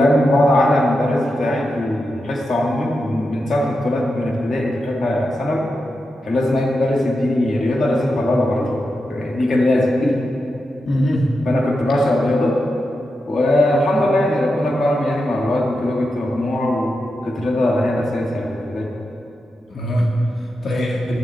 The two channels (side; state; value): both; normal; correlation 0.88